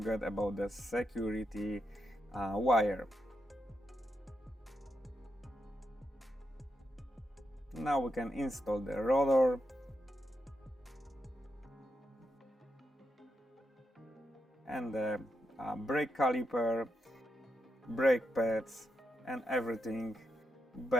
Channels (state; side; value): normal; both; correlation 0.84